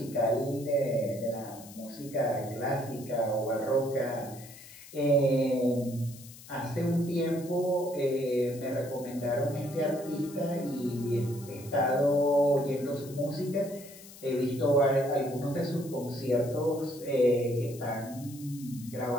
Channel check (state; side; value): noise; left; hiss, 18 dB below the sound